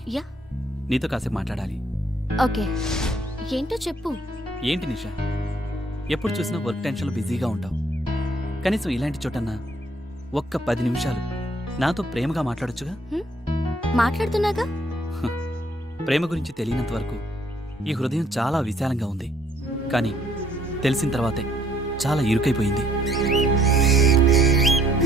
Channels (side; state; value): both; normal; correlation 0.65